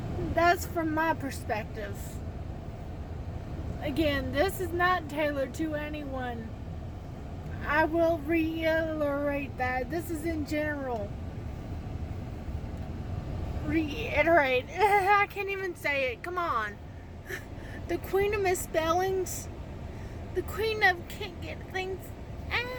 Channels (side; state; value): both; identical; correlation 1.00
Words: That's from my perspective. Again, this is not tailored to anyone. I will reiterate that. This is in general. Reiterate. I can't even say it. Come on. The queen of misspellings. The queen of can't get things.